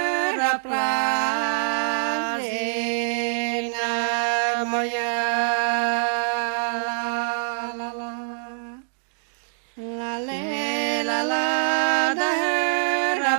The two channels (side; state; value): left; silent; digital silence